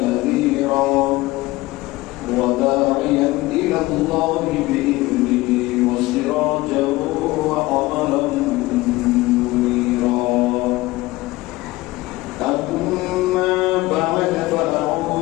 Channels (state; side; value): quieter; right; 19.5 dB